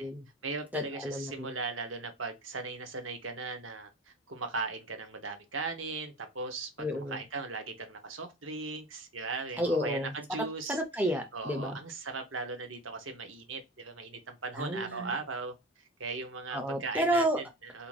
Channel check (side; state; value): both; normal; correlation 0.34